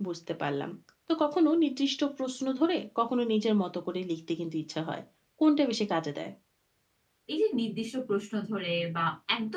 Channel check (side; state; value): both; identical; correlation 1.00